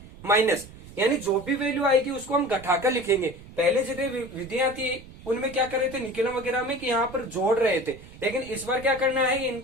माइनस, यानी जो भी वैल्यू आएगी उसको हम घटाकर लिखेंगे। पहले जितने विधियां थी उनमें क्या कर रहे थे निकलम वगैरह में कि यहाँ पर जोड़ रहे थे, लेकिन इस बार क्या करना है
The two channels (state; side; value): noise; right; rumble, 18 dB below the sound